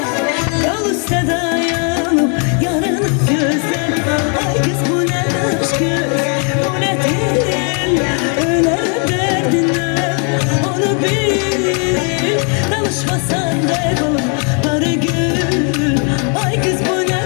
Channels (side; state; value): right; quieter; 39.7 dB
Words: yol üstte dayanıp yarını gözler ay kız bu ne aşkı bu ne dil öler derdinden onu bil danışmasan kaybolur arı gün ay kız bu ne